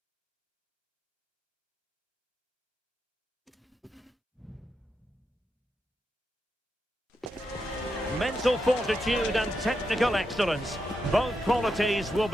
Mental fortitude and technical excellence. Both qualities will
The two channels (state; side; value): normal; both; correlation 0.85